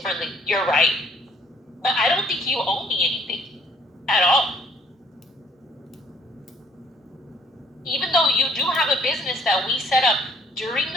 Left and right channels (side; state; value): both; normal; correlation 0.62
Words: You're right. But I don't think you owe me anything at all. Even though you do have a business that we set up during